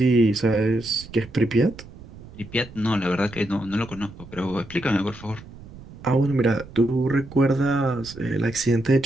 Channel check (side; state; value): right; noise; rumble, 18 dB below the sound